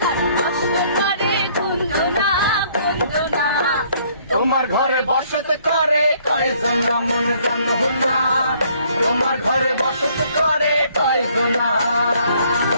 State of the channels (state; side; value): inverted; both; correlation -0.63